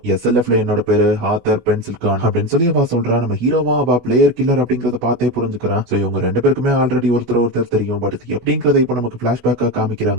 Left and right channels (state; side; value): late; left; 16 ms